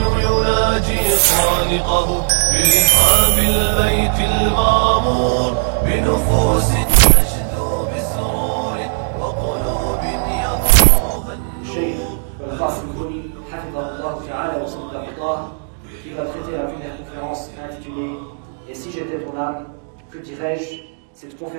يناجي خالقه برحاب البيت المعمور بنفوس تشدو بسرور وقلوب يغمرها النور. الشيخ القاسم البني حفظه الله تعالى وصدق الله qui va traiter la première conférence intitulée « Et si j'étais ton âme, que dirais-je » Cette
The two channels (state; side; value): silent; left; digital silence